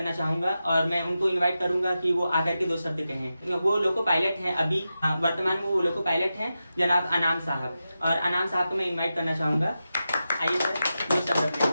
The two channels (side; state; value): both; inverted; correlation -0.91